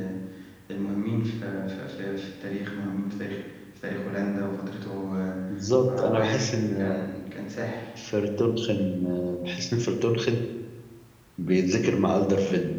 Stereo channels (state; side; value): identical; both; correlation 1.00